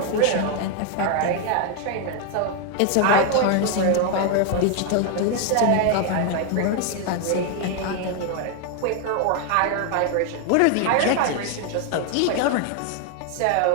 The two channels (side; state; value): both; different; correlation 0.00